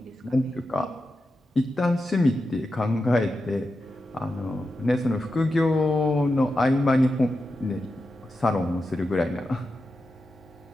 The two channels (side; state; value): both; normal; correlation 0.89